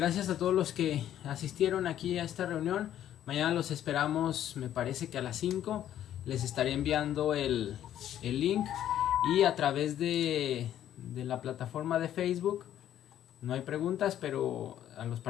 a todos los que asistieron aquí a esta reunión. Mañana los esperamos, me parece que a las 5. Les estaré enviando el link. Y a través de la plataforma de Facebook. No hay preguntas, pero a los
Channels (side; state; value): right; quieter; 11.4 dB